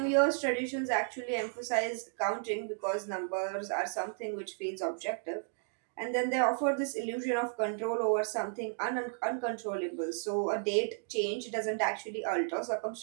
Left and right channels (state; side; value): silent; left; digital silence